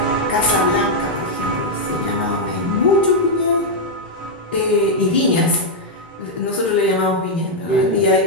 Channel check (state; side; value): normal; both; correlation -0.02